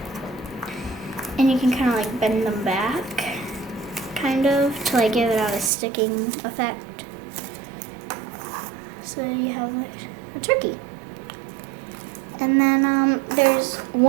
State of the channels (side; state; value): left; drops out; at 5.7 s